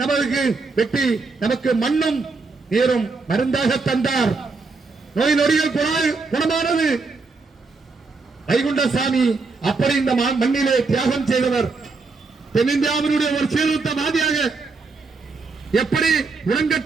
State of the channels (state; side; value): quieter; left; 4.1 dB